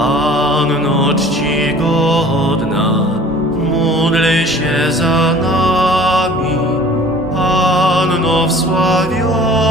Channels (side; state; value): both; normal; correlation 0.48